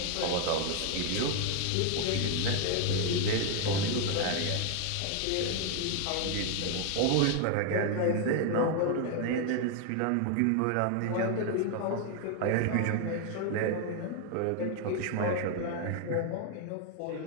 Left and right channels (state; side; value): different; both; correlation 0.00